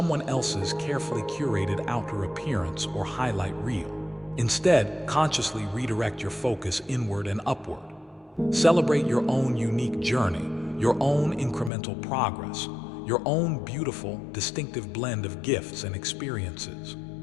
else's carefully curated outer appearance or highlight reel. Instead, consciously redirect your focus inward and upward. Celebrate your own unique journey, your own incremental progress, your own beautiful, distinctive blend of gifts and experiences.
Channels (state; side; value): drops out; right; at 11.7 s